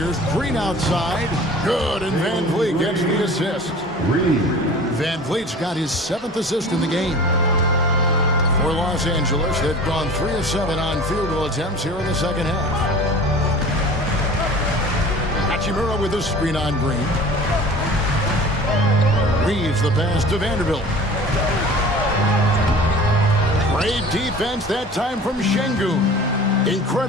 Green outside. Good, and Van Vliet gets the assist. Van Vliet's got his 7th assist in the game. For Los Angeles, they've gone 3 of 7 on field goal attempts here in the second half. Hachimura with a screen on Green. Reeves the pass to Vanderbilt. Great defense that time from Şengün.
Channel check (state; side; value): normal; both; correlation 0.41